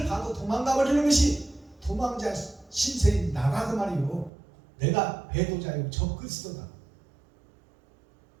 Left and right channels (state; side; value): drops out; left; at 4.3 s